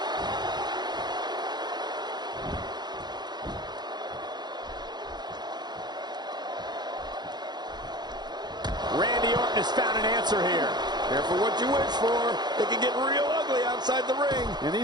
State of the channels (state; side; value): late; left; 0.21 ms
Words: Randy Orton has found an answer here. Careful what you wish for. It can get real ugly outside the ring. And